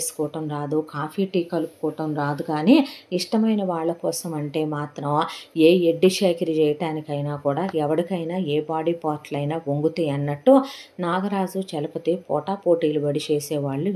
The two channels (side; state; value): both; identical; correlation 1.00